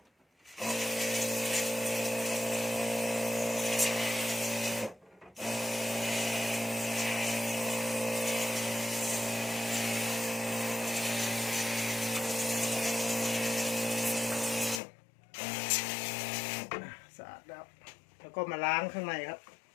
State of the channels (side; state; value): right; drops out; at 14.8 s